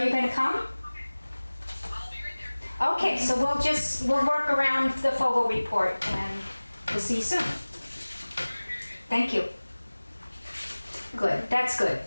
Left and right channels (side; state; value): both; inverted; correlation -1.00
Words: you gonna come? I'll be right there. Okay, so we'll work around the Fogel report and we'll see you soon. Thank you. Good, that's good.